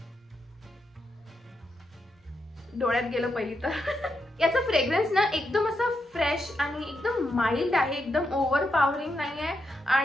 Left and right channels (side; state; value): both; normal; correlation 0.83